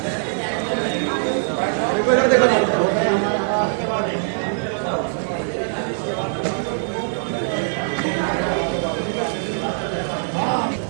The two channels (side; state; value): left; silent; 64 dB below the other